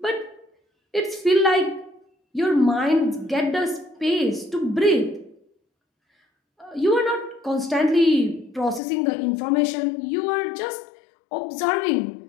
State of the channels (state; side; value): drops out; right; at 8.8 s